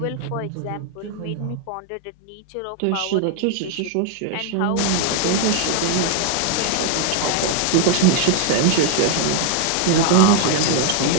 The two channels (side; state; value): both; different; correlation 0.00